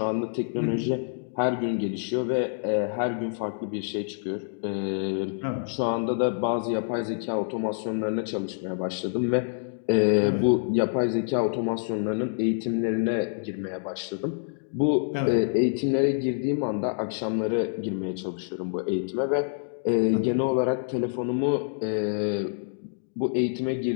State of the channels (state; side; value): silent; right; digital silence